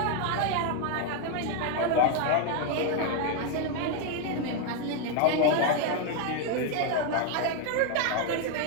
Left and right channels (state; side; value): different; both; correlation 0.01